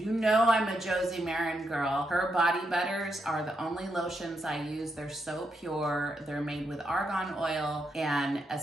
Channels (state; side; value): normal; both; correlation 0.82